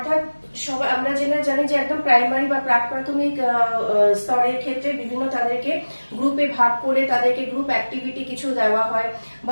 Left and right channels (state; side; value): inverted; both; correlation -1.00